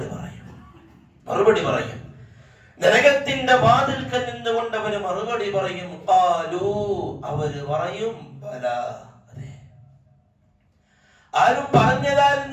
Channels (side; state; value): both; identical; correlation 1.00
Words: മറുപടി പറയും. നരകത്തിന്റെ വാതിൽക്കൽ നിന്നുകൊണ്ട് അവര് മറുപടി പറയും. അവര് പറയും, ബലാ, അതെ. ആരും